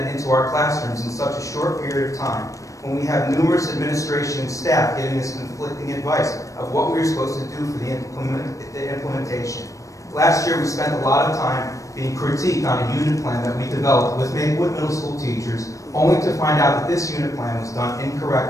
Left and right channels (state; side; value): late; right; 0.16 ms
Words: it into our classrooms in such a short period of time when we have numerous administration and staff giving us conflicting advice of what we are supposed to do for the implementation? Last year we spent a lot of time being critiqued on a unit plan that we developed with Maplewood Middle School teachers, only to find out that this unit plan was done